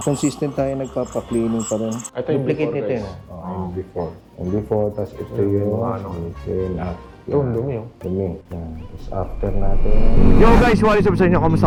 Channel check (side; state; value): both; identical; correlation 1.00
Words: consistent tayo nagpapa-cleaning pa rin. Ito yung Duplicate before, nito guys. yun. Yung before. Yung before, tapos ito yung yung after. Yung dumi yun. Dumi. Yan. Tapos after natin. Yo guys, what is up sa inyo?